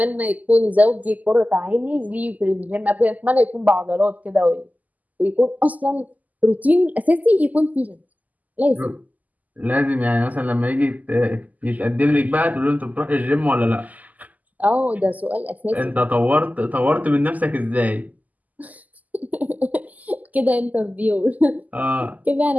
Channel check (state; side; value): late; left; 0.079 ms